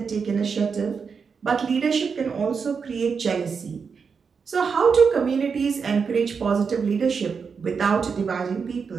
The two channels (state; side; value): quieter; left; 5.7 dB